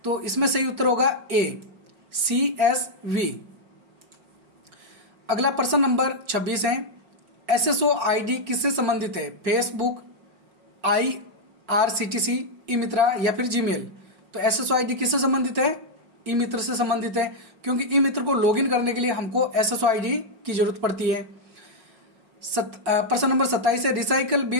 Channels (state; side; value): late; left; 4.4 ms